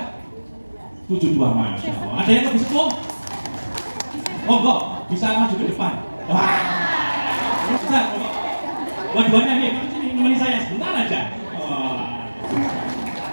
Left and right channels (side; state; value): both; inverted; correlation -1.00